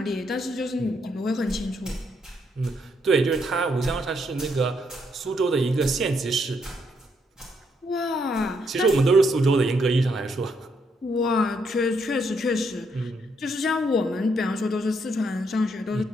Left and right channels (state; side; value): normal; both; correlation 0.75